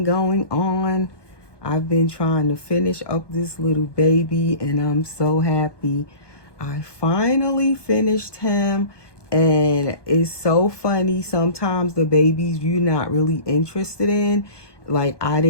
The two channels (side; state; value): right; late; 1.2 ms